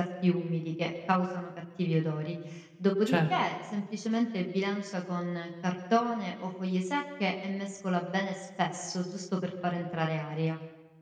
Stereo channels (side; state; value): both; identical; correlation 1.00